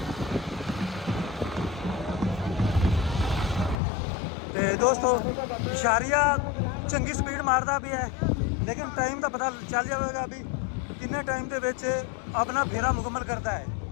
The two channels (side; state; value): right; drops out; at 3.8 s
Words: ਤੇ ਦੋਸਤੋ ਇਸ਼ਾਰੀਆ ਚੰਗੀ ਸਪੀਡ ਮਾਰਦਾ ਵੀ ਹੈ ਲੇਕਿਨ ਟਾਈਮ ਦਾ ਪਤਾ ਚੱਲ ਜਾਵੇਗਾ ਵੀ ਕਿੰਨੇ ਟਾਈਮ ਦੇ ਵਿੱਚ ਆਪਣਾ ਫੇਰਾ ਮੁਕੰਮਲ ਕਰਦਾ ਹੈ।